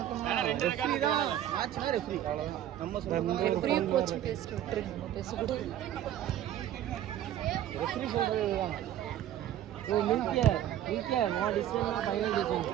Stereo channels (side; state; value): left; quieter; 11.7 dB